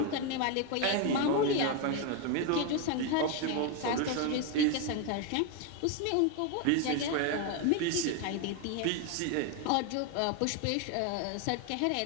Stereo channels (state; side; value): different; both; correlation 0.02